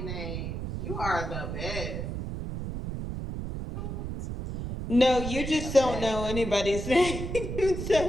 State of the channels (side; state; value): right; noise; rumble, 5 dB below the sound